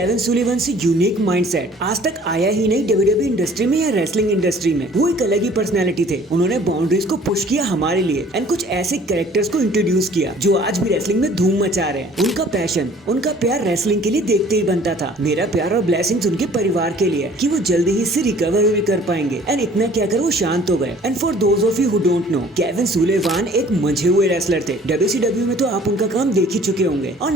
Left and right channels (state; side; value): normal; both; correlation 0.53